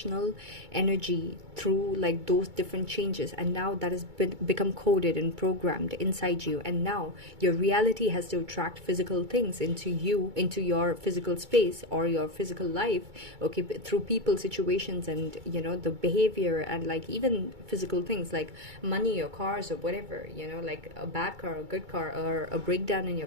energy through like those different changes, and now that has become coded and programmed inside you, and now your reality has to attract physical things into you, into your physical space or your physical life, okay, through people, situations, and the behavior, and like even physical things like money or cars or whatever, like a bad car or a good car, or a breakdown in your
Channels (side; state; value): left; late; 2.2 ms